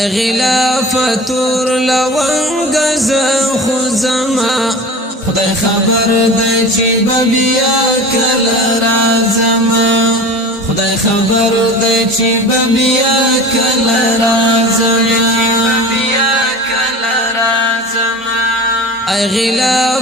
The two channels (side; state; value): both; normal; correlation 0.36